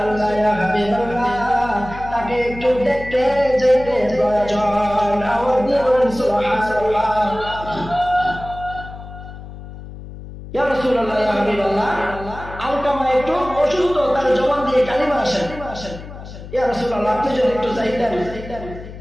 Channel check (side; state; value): left; noise; hum, 13 dB below the sound